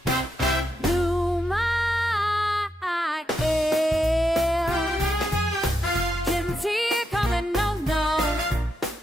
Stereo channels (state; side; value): normal; both; correlation 0.82